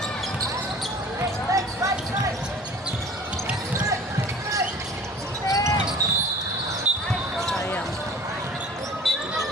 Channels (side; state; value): both; normal; correlation 0.45